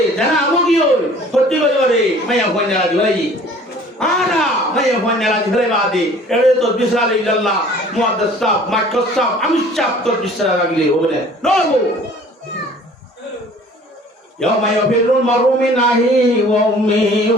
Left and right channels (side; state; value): both; normal; correlation 0.50